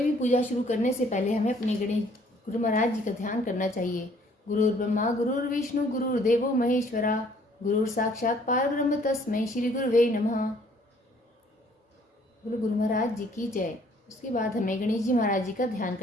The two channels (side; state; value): both; normal; correlation 0.60